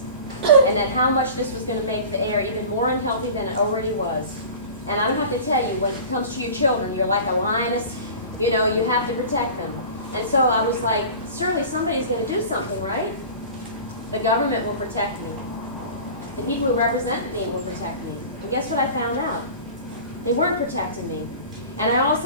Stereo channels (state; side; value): inverted; both; correlation -0.38